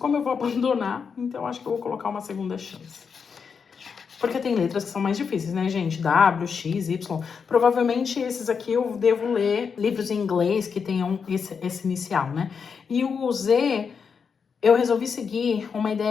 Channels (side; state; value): right; quieter; 6.1 dB